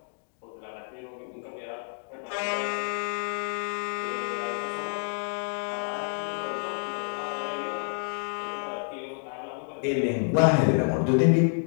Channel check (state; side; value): silent; right; 59 dB below the other